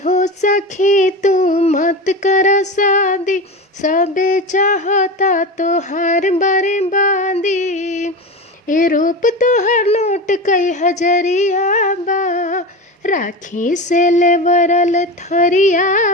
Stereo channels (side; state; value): both; normal; correlation 0.24